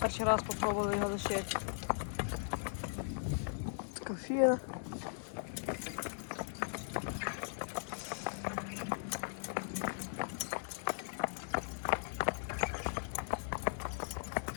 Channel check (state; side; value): silent; right; digital silence